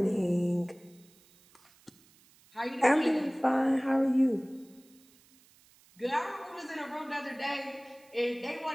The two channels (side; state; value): right; noise; hiss, 29 dB below the sound